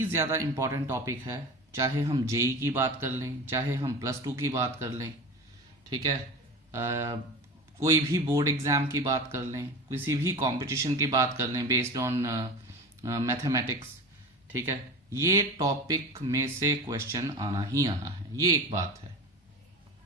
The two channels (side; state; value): both; normal; correlation 0.31